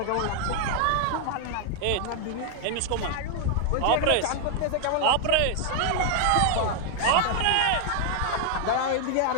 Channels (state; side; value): different; both; correlation 0.00